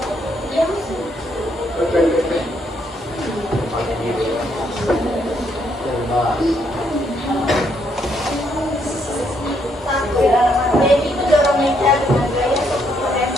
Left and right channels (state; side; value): normal; both; correlation 0.73